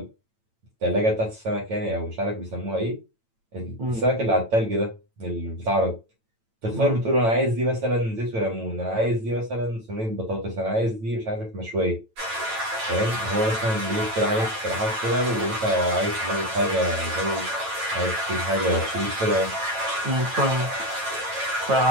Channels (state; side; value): late; left; 9.0 ms